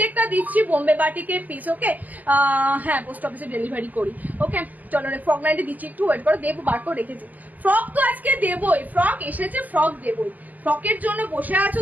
দিচ্ছি বোম্বে বাটিকের পিস। ওকে হ্যাঁ পোস্ট অফিসে ডেলিভারি করি। ওকে চলো ফ্রক নাইটে দিচ্ছি, একটু ওয়েট করো, দেবো বার করে রেখেছি। ফ্রক তো আজকে দেবই, ফ্রক এসেছে, ফ্রক দেবই। ফ্রকের জন্য বসে আছো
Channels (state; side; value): late; left; 0.081 ms